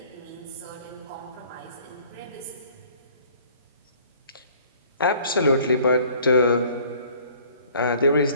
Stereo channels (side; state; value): both; inverted; correlation -0.54